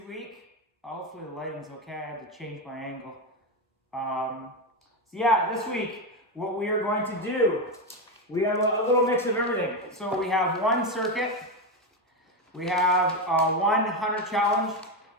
Hopefully the lighting's okay. I had to change my angle. This week what we are going to do, we have a little mix of everything. So we have one circuit, we have one 100 challenge,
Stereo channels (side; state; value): both; normal; correlation 0.11